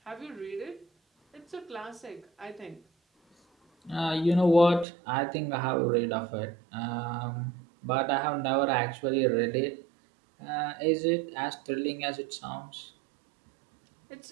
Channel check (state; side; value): drops out; left; at 4.9 s